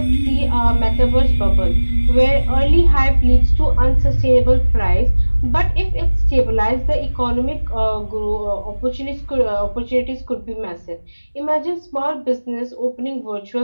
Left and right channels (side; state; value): both; inverted; correlation -1.00